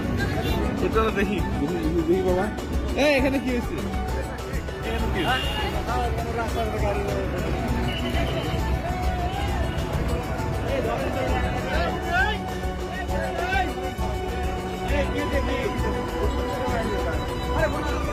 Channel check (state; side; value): identical; both; correlation 1.00